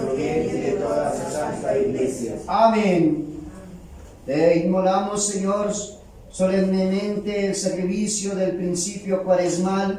bien y de toda su santa iglesia. Amén. Te inmolamos, Señor, solemnemente el sacrificio del principio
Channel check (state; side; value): identical; both; correlation 1.00